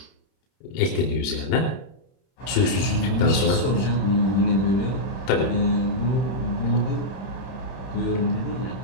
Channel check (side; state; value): right; late; 31 ms